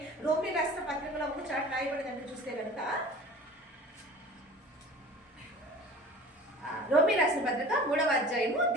రోమీ రాసిన పత్రికలో ఒక చాట్ రాయబడిందంటే చూస్తే కనుక రోమీ రాసిన పత్రిక 3వ అధ్యాయము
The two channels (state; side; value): normal; both; correlation 0.41